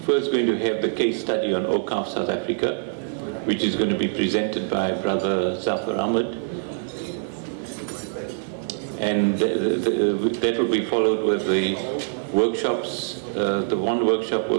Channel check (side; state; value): left; silent; digital silence